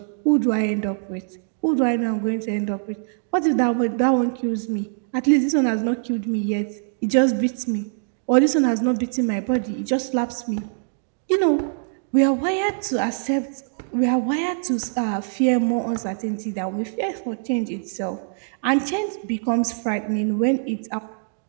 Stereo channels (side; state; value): left; silent; digital silence